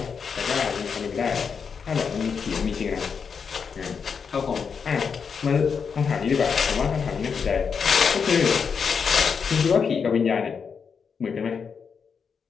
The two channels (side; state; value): right; quieter; 6.1 dB